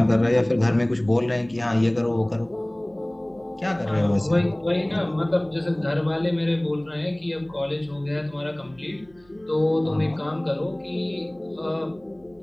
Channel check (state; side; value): noise; right; hum, 30 dB below the sound